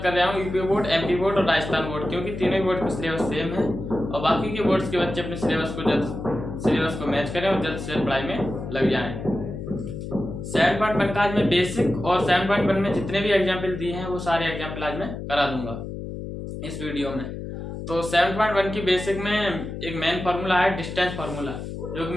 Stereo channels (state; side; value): noise; left; hum, 8 dB below the sound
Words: कर रहा हूं, यूपी बोर्ड, एमपी बोर्ड और राजस्थान बोर्ड, क्योंकि तीनों ही बोर्ड का सिलेबस सेम है और बाकी के बोर्ड्स के बच्चे अपने सिलेबस को मैच करें और जल्द से जल्द पढ़ाई में लग जाएं। 7.1 का आज मैं बेसिक और 7.1 में जितने भी एग्जाम्पल दिए हैं वो सारे एग्जाम्पल आज मैं करा दूंगा इस वीडियो में। तो 7.1 की बेसिक में एक मेन फार्मूला है डिस्टेंस फार्मूला, जो कि